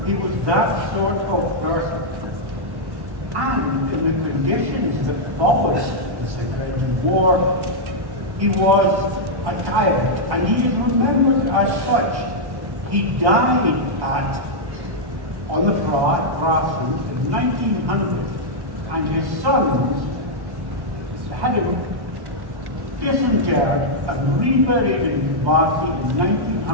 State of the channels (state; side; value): late; left; 1.1 ms